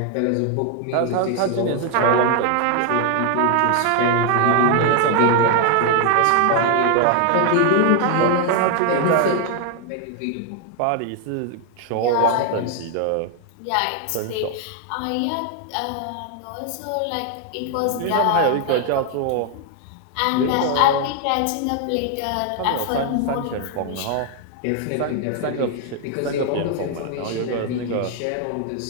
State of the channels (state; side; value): different; both; correlation 0.00